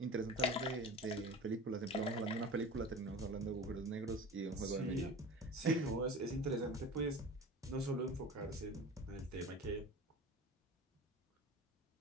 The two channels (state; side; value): normal; both; correlation 0.35